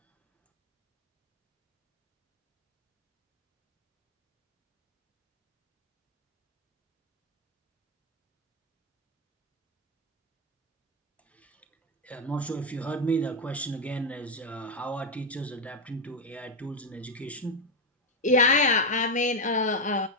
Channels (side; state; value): both; normal; correlation 0.07